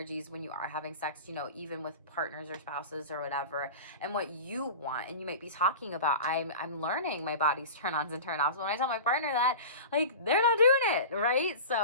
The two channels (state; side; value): inverted; both; correlation -0.33